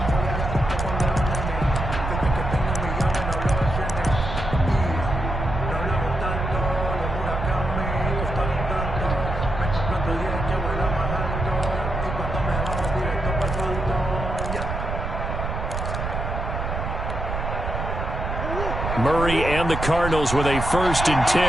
Murray and the Cardinals with a 1st and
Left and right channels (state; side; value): noise; right; rumble, 4 dB below the sound